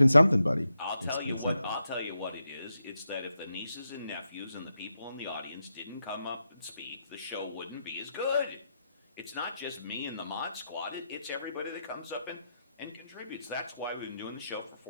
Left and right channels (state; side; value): inverted; both; correlation -0.85